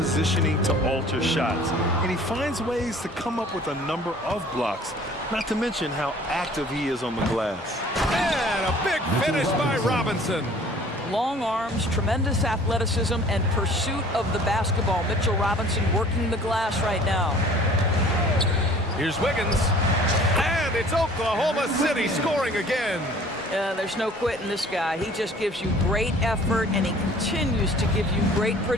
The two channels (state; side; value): normal; both; correlation 0.51